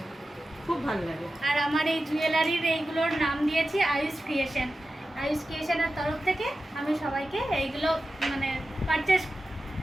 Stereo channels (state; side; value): normal; both; correlation 0.93